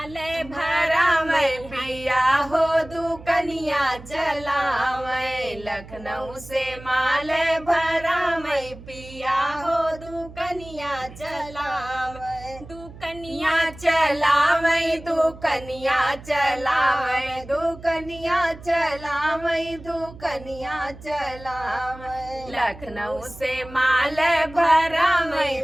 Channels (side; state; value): right; noise; hum, 17 dB below the sound